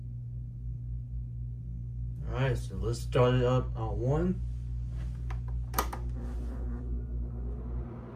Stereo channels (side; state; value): both; identical; correlation 1.00